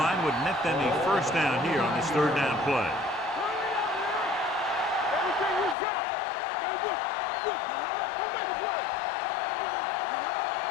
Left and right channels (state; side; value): drops out; right; at 5.8 s